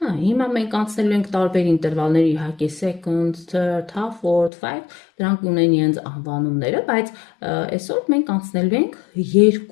մենք անցնելու ենք տարբեր ինտերվալներ, իհարկե seconds, third, half, fourth, five, դրանք ունեն իրենց անվանումները, բայց այսօր մենք անցնելու ենք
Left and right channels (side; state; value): right; drops out; at 4.5 s